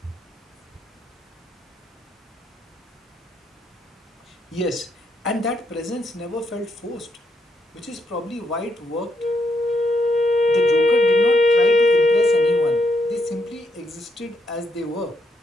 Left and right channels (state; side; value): normal; both; correlation 0.77